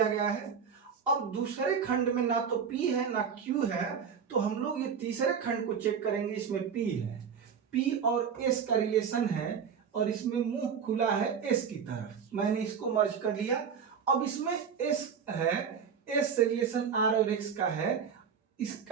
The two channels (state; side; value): quieter; left; 6.8 dB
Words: गया है। अब दूसरे खंड में ना तो P है ना Q है, तो हम लोग ये तीसरे खंड को चेक करेंगे, इसमें P है। P और S का रिलेशन है, और इसमें मुंह खुला है S की तरफ, मैंने इसको मर्ज कर लिया। अब इसमें S है, S से रिलेशन R और X का है,